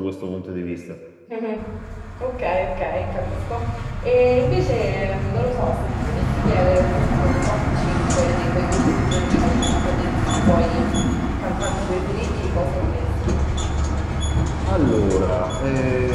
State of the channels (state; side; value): identical; both; correlation 1.00